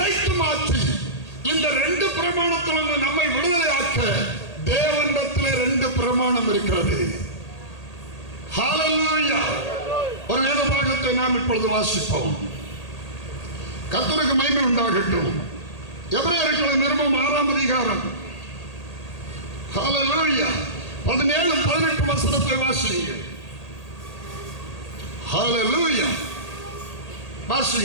மாற்றி இந்த ரெண்டு பிரமாணத்திலிருந்து நம்மை விடுதலையாக்க தேவனிடத்திலே ரெண்டு பிரமாணம் இருக்கிறது. ஹல்லேலூயா. ஒரு வேத பாகத்தை நாம் இப்பொழுது வாசிப்போம். கர்த்தருக்கு மகிமை உண்டாகட்டும். எபிரேயர்களின் நிருபம் 6ஆம் அதிகாரம் ஹல்லேலூயா 17-18 வசனத்தை வாசியுங்கள். ஹல்லேலூயா.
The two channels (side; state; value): right; late; 1.8 ms